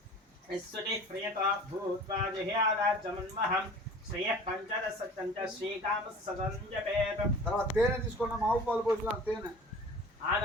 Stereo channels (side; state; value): both; normal; correlation 0.43